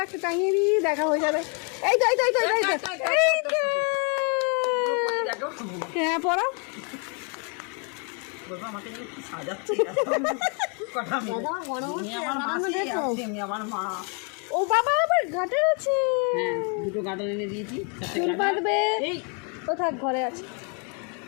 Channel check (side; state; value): right; quieter; 37.2 dB